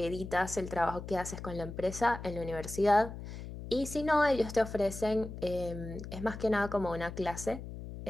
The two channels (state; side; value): noise; left; hum, 10 dB below the sound